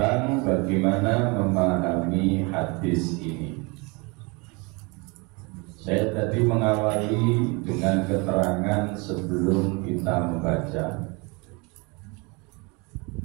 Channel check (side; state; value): left; quieter; 28.9 dB